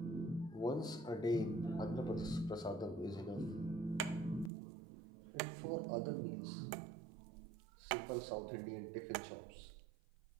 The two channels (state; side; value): drops out; left; at 4.5 s